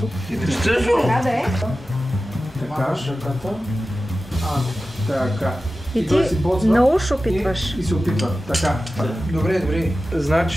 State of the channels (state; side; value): normal; both; correlation 0.94